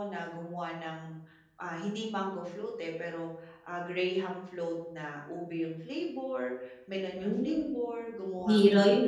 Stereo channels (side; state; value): both; identical; correlation 1.00